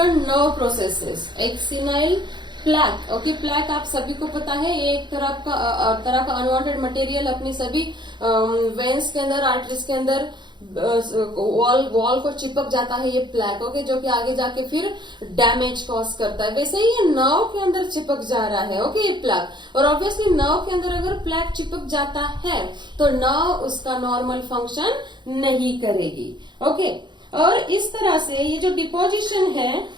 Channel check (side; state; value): left; late; 0.22 ms